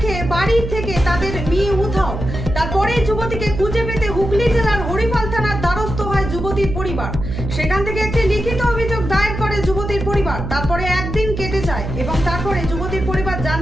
বাড়ি থেকে তাদের মেয়ে উধাও। তারপরে যুবতীকে খুঁজে পেতে হুগলি জেলার হরিপাল থানার দ্বারস্থ হয় যুবতীর পরিবার। সেখান থেকে একটি লিখিত অভিযোগ দায়ের করে যুবতীর পরিবার। তারপরে একদিন কেটে যায় এবং তারপরে যুবতীর পরিবার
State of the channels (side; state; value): right; noise; hum, 6 dB below the sound